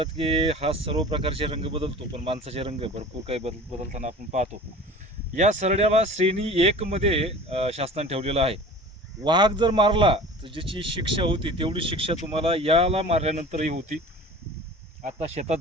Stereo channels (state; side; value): normal; both; correlation 0.40